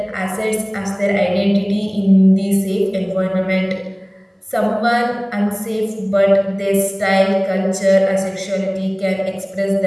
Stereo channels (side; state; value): both; identical; correlation 1.00